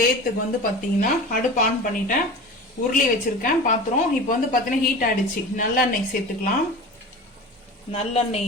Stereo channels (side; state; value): both; normal; correlation 0.34